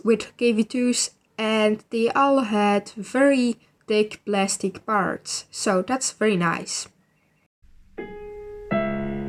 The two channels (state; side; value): identical; both; correlation 1.00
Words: with kv2s, and they all had very thick plastic parts, so that's very nice.